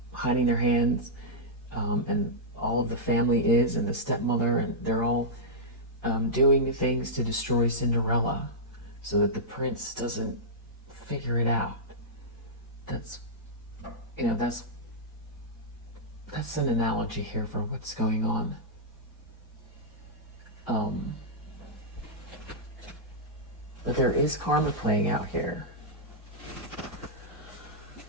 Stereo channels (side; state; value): both; normal; correlation -0.10